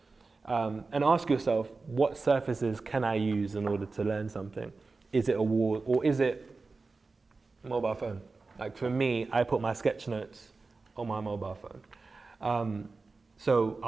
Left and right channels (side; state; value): left; quieter; 3.9 dB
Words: And ask yourself, what surfaces can I use in order to learn something? Is it a wall or is it a mobile phone? Like for me, I put my sketch notes on my mobile phone. So